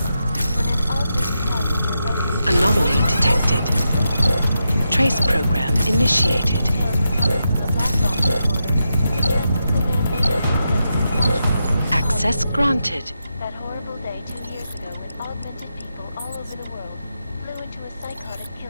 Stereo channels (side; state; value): both; inverted; correlation -0.86